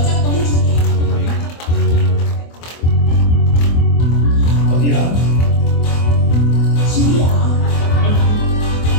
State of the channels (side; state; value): right; late; 24 ms